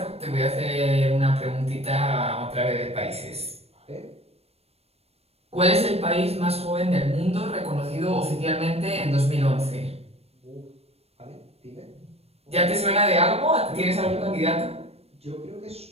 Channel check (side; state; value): left; late; 0.29 ms